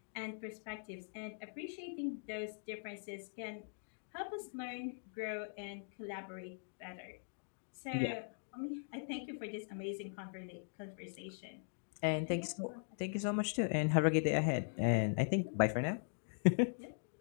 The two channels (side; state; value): right; silent; digital silence